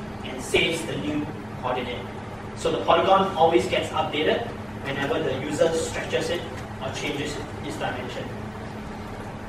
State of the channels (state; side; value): identical; both; correlation 1.00